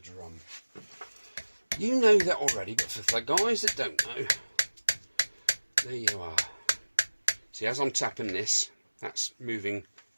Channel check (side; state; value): both; inverted; correlation -1.00